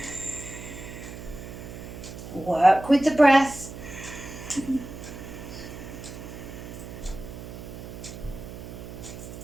Work with the breath.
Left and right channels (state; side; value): noise; right; hum, 11 dB below the sound